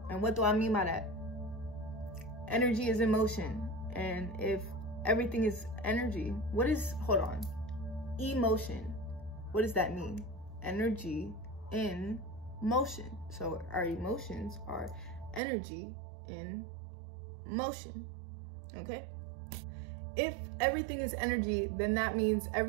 And what do I mean by that? Energy is emotion. And if everything is energy, what is, hold on, emotion? What does that mean? Energy in motion. So our emotions are energy in motion, okay? If everything is energy, then that means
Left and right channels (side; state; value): left; drops out; at 15.4 s